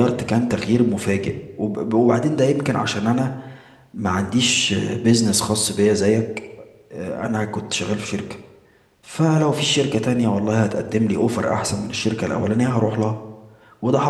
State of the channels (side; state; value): both; identical; correlation 1.00